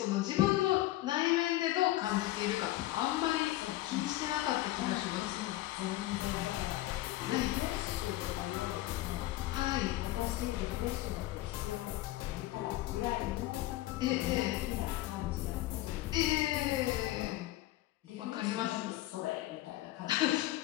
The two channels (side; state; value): right; quieter; 16.6 dB